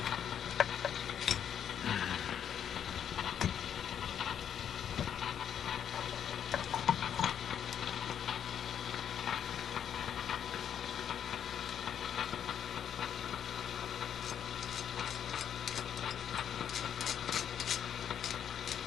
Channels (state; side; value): quieter; right; 8.9 dB